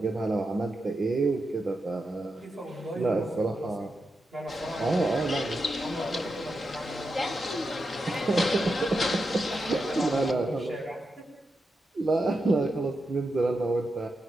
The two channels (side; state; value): both; normal; correlation 0.87